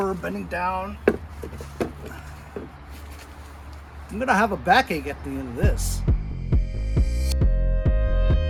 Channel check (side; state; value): both; identical; correlation 1.00